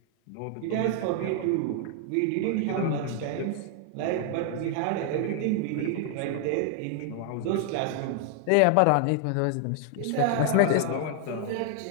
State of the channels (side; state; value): both; different; correlation 0.00